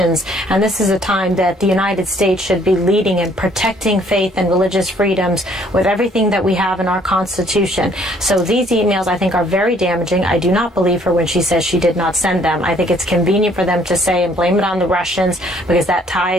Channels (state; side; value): normal; both; correlation 0.62